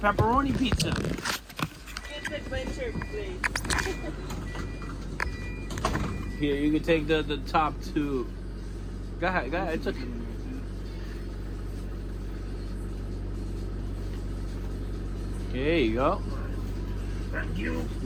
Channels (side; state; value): both; identical; correlation 1.00